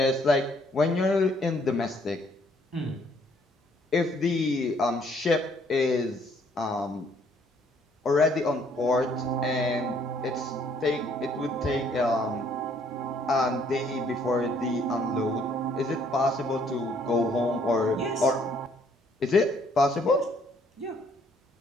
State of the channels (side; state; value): both; normal; correlation 0.65